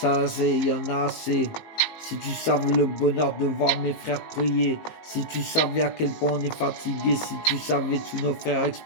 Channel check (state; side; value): late; right; 18 ms